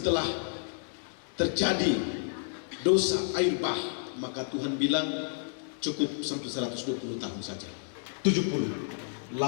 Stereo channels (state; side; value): silent; right; digital silence